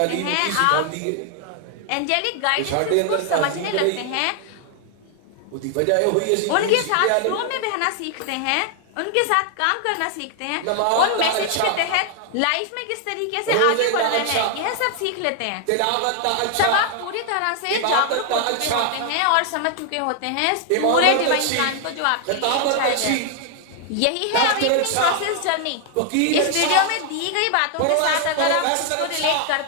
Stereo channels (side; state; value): both; different; correlation 0.00